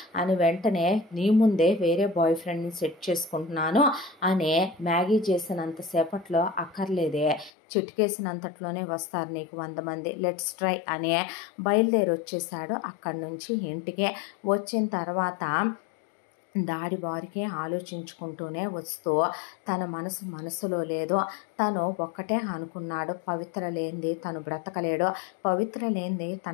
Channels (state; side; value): drops out; right; at 7.5 s